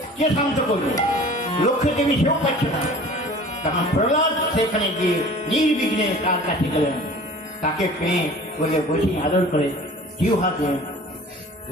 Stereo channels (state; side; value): normal; both; correlation 0.44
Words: কে শান্ত করবে? লক্ষ্মী দেবী সেও পাচ্ছে না। তখন প্রহ্লাদ সেখানে গিয়ে নির্বিঘ্নে তার কাছে গেলেন, তাকে পেয়ে বলে বসে আদর করে জিউ হাতে